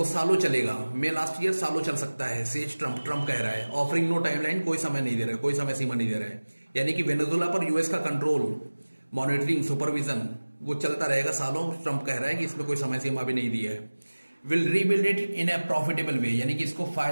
सालों चलेगा. मे last year सालों चल सकता है, सेज ट्रम्प. ट्रम्प कह रहा है, ऑफरिंग नो टाइमलाइन, कोई समय नहीं दे रहा है, कोई समय सीमा नहीं दे रहा है. यानी कि वेनेजुला पर यूएस का कंट्रोल, मॉनिटरिंग, सुपरविजन वो चलता रहेगा सालों. ट्रम्प कह रहा है कि इसमें कोई समय सीमा भी नहीं दिया है. Will rebuild it in a profitable way, यानी कि इसको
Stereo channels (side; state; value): both; inverted; correlation -1.00